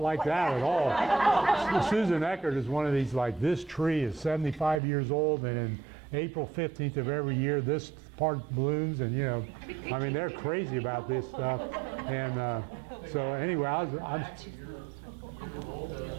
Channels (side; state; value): left; drops out; at 4.8 s